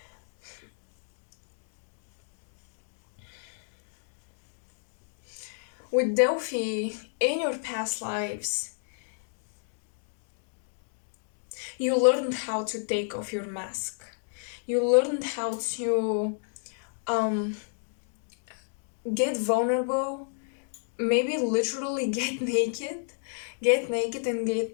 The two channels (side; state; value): right; silent; digital silence